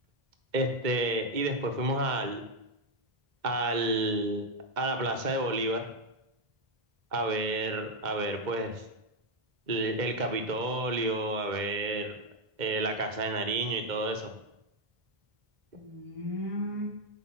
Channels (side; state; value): left; late; 2.1 ms